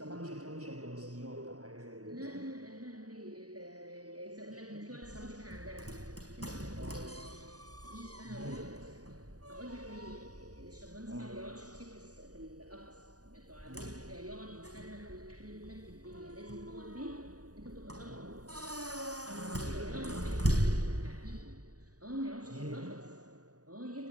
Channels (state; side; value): late; left; 0.68 ms